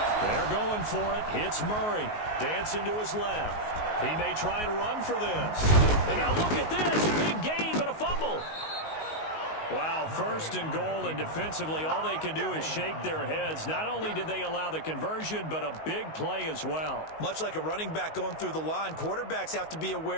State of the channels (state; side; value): late; right; 19 ms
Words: They're going for it. It's Murray. Dancing to his left. He may try and run for this. And now look at this. Big gain, but a fumble. Wow, 1st and goal, and defensively all they can do is shake their heads. Not only did they allow the conversion, but a big play as well. Much like a running back going through the line, quarterbacks have to be